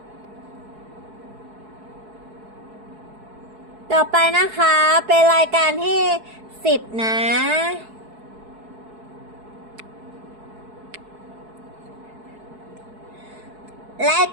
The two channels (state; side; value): late; left; 4.7 ms